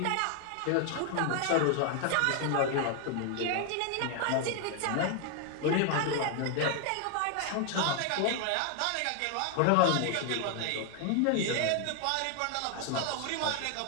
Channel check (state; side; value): different; both; correlation 0.00